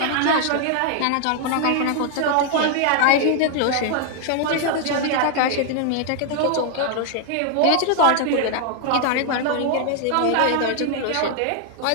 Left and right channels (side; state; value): both; different; correlation 0.00